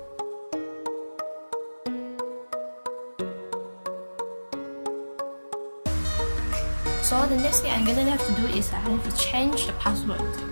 So the next thing I'm gonna have to do is I have to change the password.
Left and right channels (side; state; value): both; inverted; correlation -1.00